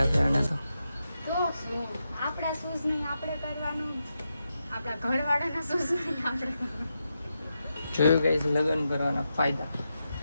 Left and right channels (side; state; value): both; inverted; correlation -0.87